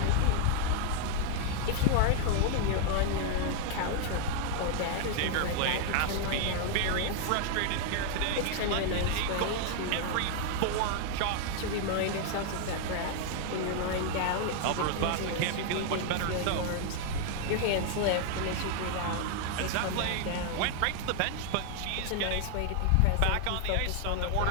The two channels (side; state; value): both; different; correlation 0.00